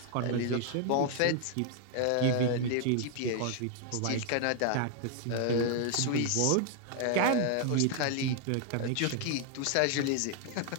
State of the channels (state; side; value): different; both; correlation 0.00